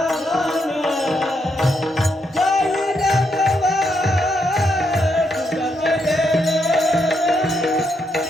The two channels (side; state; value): both; normal; correlation 0.79